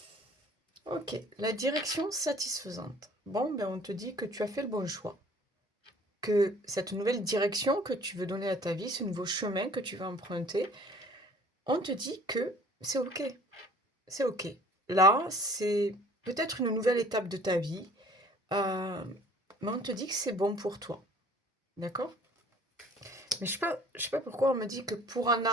Ok, la direction satisfaisante. Bon, ben on te dit que tu as fait le bon choix. Que cette nouvelle direction que tu veux donner à ta vie, ce nouveau chemin que tu vas emprunter, on te dit que c'est OK. C'est OK. Là, c'est peut-être une nouvelle étape de ta vie, euh, mais on te dit que c'est bon pour toi. D'accord? Mais je sais pas pourquoi on me dit que pour en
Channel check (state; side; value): normal; both; correlation 0.52